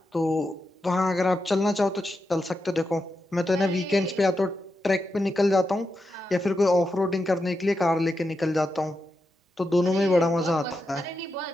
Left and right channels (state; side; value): normal; both; correlation 0.87